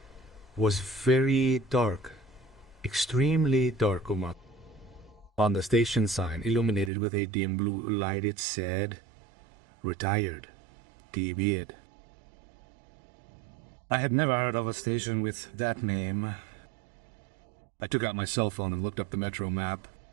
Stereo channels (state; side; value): drops out; left; at 6.9 s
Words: was very dark, extremely dark. On the station sign, illuminated with a dim blue light, it said, "Retired, TB'd." I had never heard of a station with that name. I took out my cell phone and looked up the metro map.